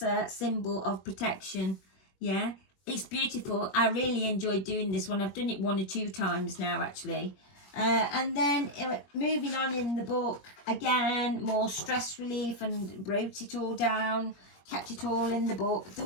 symbol of protection. Yeah, it's beautiful. I really enjoyed doing this one. I've done it 1 or 2 times now, actually. And then moving on in the book, again, more stress relief, and wrote it all down, kept it all in the book,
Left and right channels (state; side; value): late; right; 21 ms